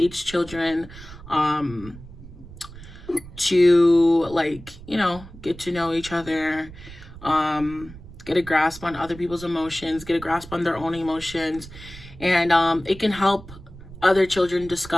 children, to like, get to know each other, get a grasp on other people's emotions, get a grasp on their own emotions. And it can help other children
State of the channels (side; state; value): right; noise; rumble, 17 dB below the sound